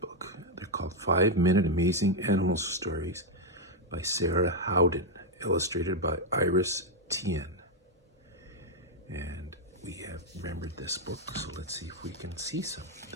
They're called 5-Minute Amazing Animal Stories by Sarah Howden, illustrated by Iris Tien. And we have remembered this book, so let's see if we can see some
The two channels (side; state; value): both; normal; correlation 0.01